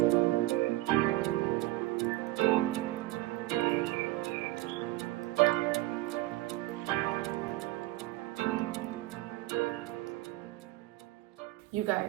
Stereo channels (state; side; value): quieter; left; 18.3 dB